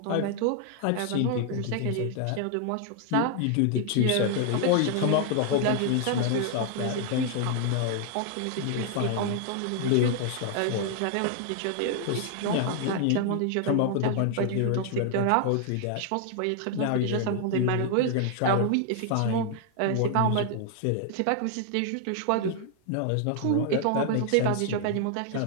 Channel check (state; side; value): different; both; correlation 0.00